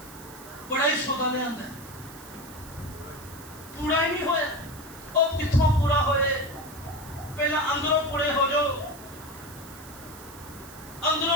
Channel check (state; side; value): noise; right; hiss, 18 dB below the sound